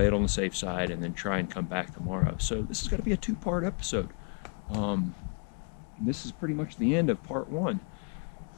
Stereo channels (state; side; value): quieter; right; 38.8 dB